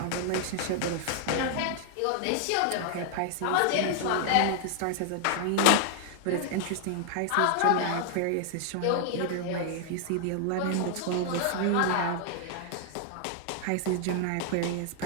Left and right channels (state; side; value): different; both; correlation 0.00